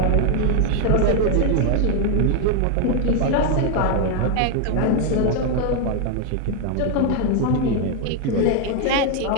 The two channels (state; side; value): different; both; correlation 0.01